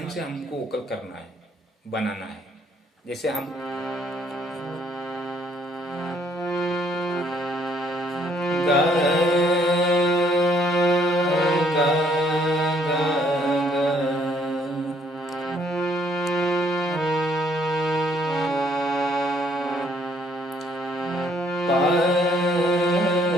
से हमको वोकल करना है, बनाना है। जैसे हम गा गा गा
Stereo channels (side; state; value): both; normal; correlation 0.66